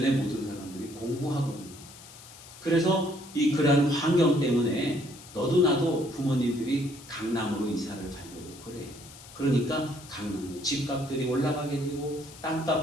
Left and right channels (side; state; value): left; noise; hiss, 18 dB below the sound